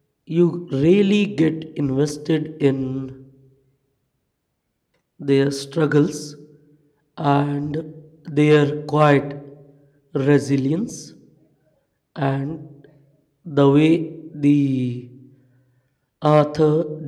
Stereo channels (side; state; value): both; identical; correlation 1.00